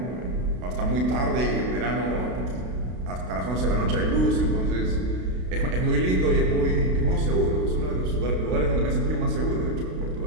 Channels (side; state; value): left; late; 32 ms